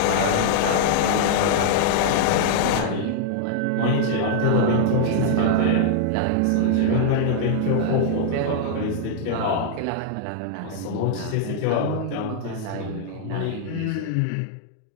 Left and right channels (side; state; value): both; different; correlation -0.01